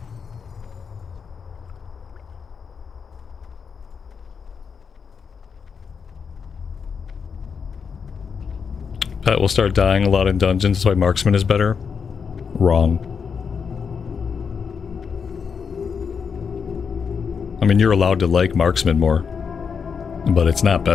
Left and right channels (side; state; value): right; quieter; 6.2 dB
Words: Pet will start dying a lot in dungeons, that's why marksman is better. Wrong. I mean, you're allowed to like marksman more, but it's not